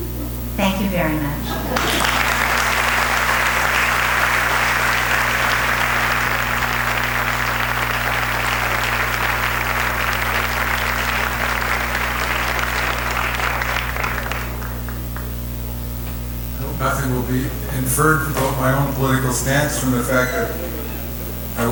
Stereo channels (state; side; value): identical; both; correlation 1.00